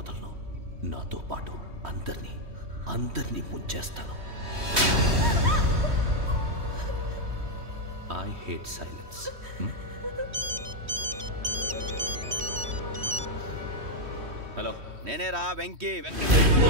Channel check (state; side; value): late; left; 3.1 ms